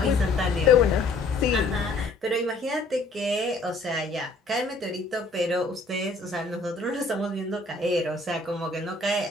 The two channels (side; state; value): right; quieter; 3.2 dB